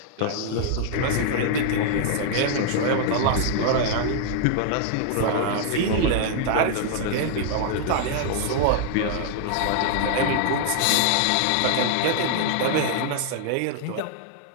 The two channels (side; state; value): both; different; correlation 0.00